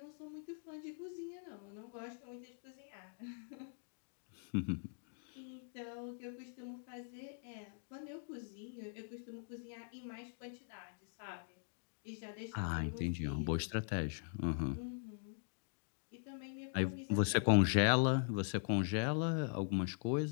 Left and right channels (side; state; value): right; silent; digital silence